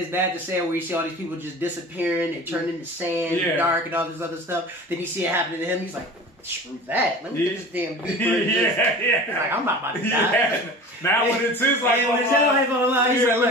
bad to say where you see all these people just disappearing, they turn into sand, dark, and all this other stuff. Then you see it happening to him. He's like, screw that. Let me get this damn beeper. He's like, I'm not about to die. Yeah. Now when it's his life on the line, he's like,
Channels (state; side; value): normal; both; correlation 0.38